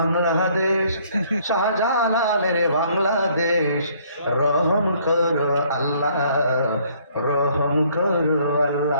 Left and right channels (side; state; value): both; inverted; correlation -0.62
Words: শাহজালালের বাংলাদেশ, রহম করো আল্লাহ, রহম করো